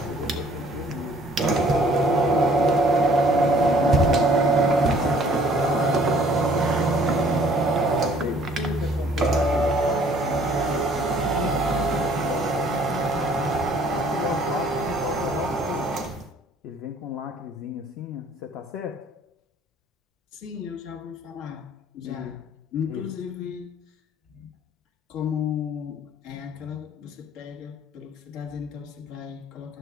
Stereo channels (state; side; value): normal; both; correlation 0.57